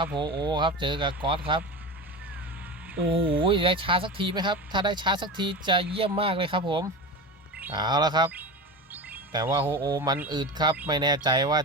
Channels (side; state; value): both; normal; correlation 0.27